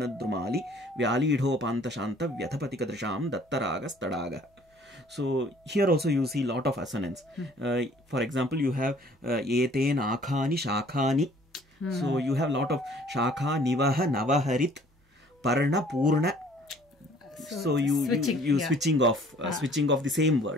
Drumali Vyali Idho Panta Shanta Vyathapatika Drisham Dattaragas Tadaga. So here also you see lot of assonance. For example, you have Eten Akhani Shakhani. So you have lot of Shakha Nivaha Navaharit Parna Purna. So you switching off the same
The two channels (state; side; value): normal; both; correlation 0.55